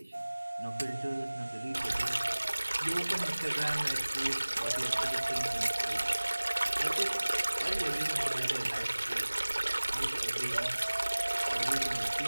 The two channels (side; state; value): both; inverted; correlation -1.00